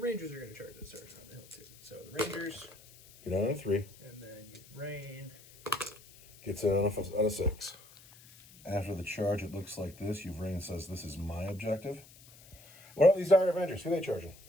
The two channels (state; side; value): noise; left; hiss, 22 dB below the sound